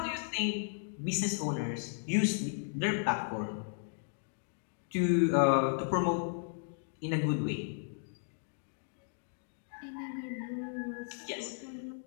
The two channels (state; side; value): silent; right; digital silence